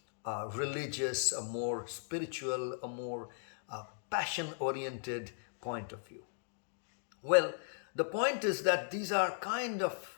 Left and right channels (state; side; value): silent; right; digital silence